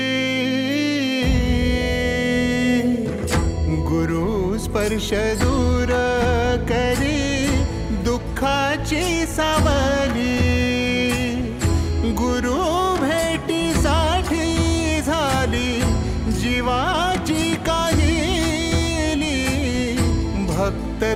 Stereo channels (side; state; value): both; identical; correlation 1.00